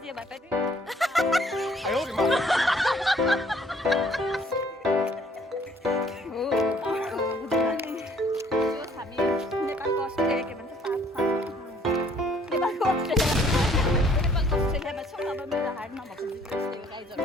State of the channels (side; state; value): both; normal; correlation 0.61